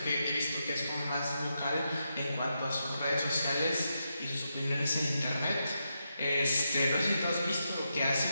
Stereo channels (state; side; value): inverted; both; correlation -0.85